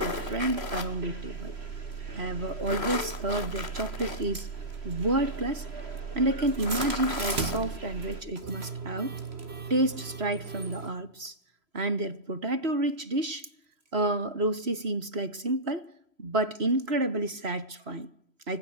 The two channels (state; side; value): late; left; 3.0 ms